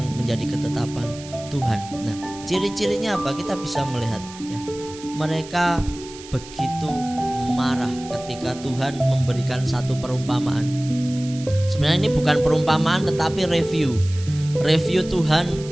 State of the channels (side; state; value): right; noise; hiss, 17 dB below the sound